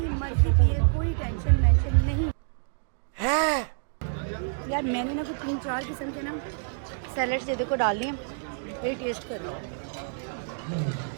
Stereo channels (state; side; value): silent; left; digital silence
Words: मर्जी पिए, कोई टेंशन मेंशन नहीं है। यार मैंने ना कुछ 3-4 किस्म के ना सैलड्स ये देखो डाल दिए, ये टेस्ट कर लो।